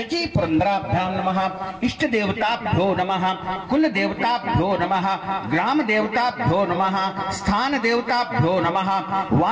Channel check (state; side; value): identical; both; correlation 1.00